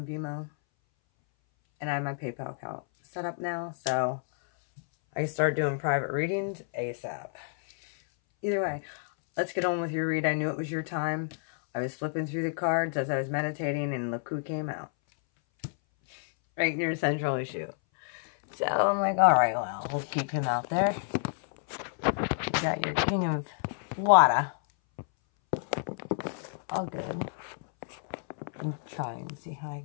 Vimo. And I have my PayPal account set up now. So I can start doing private readings ASAP. Either way, let's get on with your read. I knew it was your time. I was flipping through the cards as I was meditating and look who came out. Right in your central issue. So I'm like, all right, well, we'll keep him out there. You got your King of Water. All good. I'm trying to see how I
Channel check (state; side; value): silent; right; 58 dB below the other